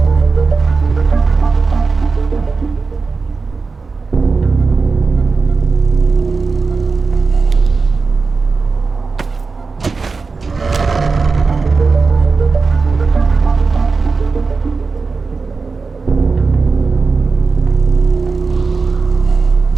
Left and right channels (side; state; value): left; quieter; 4.4 dB